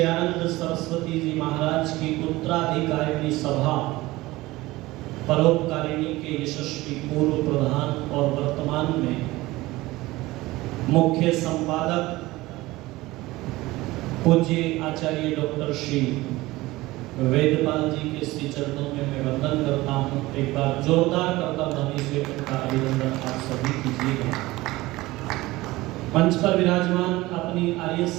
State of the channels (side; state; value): left; quieter; 19.2 dB